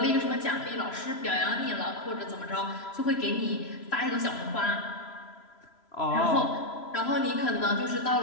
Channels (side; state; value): right; late; 3.0 ms